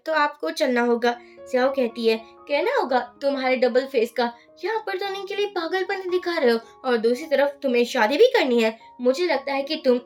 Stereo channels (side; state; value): both; identical; correlation 1.00